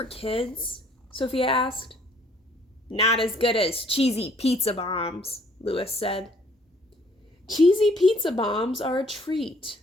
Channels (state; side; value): normal; both; correlation 0.61